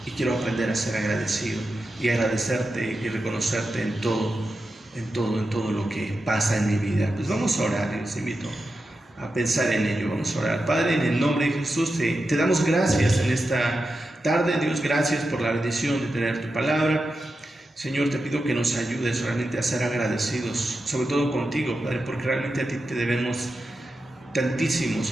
Y quiero aprender a ser agradecido y agradecerte y reconocerte en todo lo que pasa en mi vida. Pues vamos a orar y les invito a pensar en ello. Vamos a orar. Padre, en el nombre de Jesús, te damos gracias en esta tarde. Dios, gracias por la bendición de tener tu palabra. Señor, te pido que nos ayudes realmente a ser agradecidos, sobre todo contigo, Padre, porque realmente a ti te debemos tantísimo,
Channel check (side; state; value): both; normal; correlation 0.90